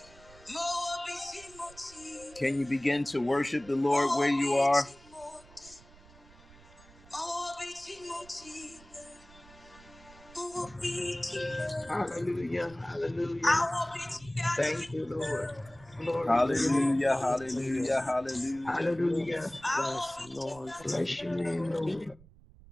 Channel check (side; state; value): right; noise; rumble, 23 dB below the sound